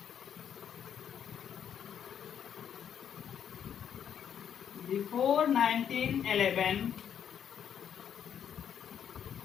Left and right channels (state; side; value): quieter; right; 8.7 dB